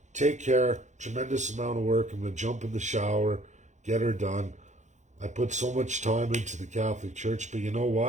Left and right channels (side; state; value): left; late; 0.34 ms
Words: Take care. Tremendous amount of work. I'm going to jump in the shower, get her done. I put so much time into the Catholic Church, but you know